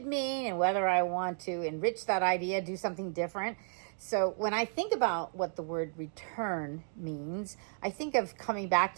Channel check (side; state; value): left; silent; digital silence